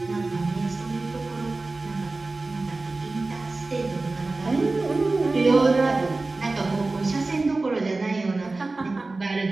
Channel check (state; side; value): quieter; left; 3.3 dB